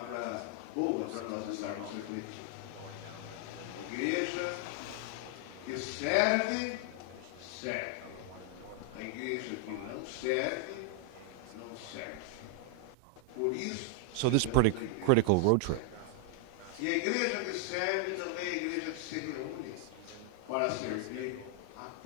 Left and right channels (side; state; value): both; different; correlation 0.00